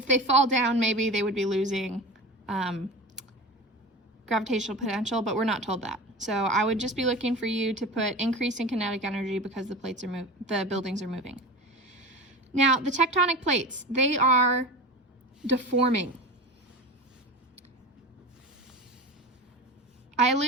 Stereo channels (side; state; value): both; normal; correlation 0.30